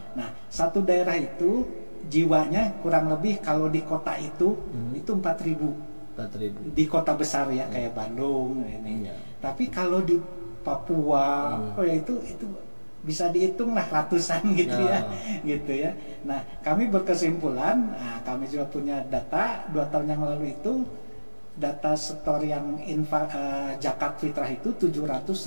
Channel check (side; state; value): both; inverted; correlation -1.00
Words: Nah, satu daerah itu jiwanya kurang lebih kalau di kota itu 4.000 di kota besar ya kayak Bandung ini. Tapi kalau di Papua itu bisa dihitung lah ratusan gitu ya. Nah, kami berkesimpulan, kami juga punya data 2 tahun yang lalu itu data setor yang zakat fitrah itu 700.000